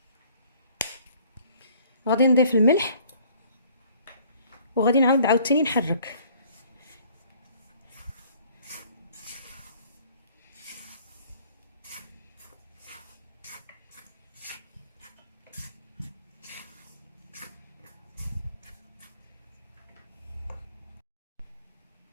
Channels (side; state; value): both; inverted; correlation -0.56